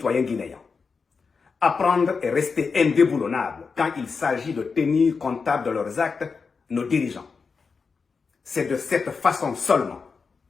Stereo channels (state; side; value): quieter; right; 5.1 dB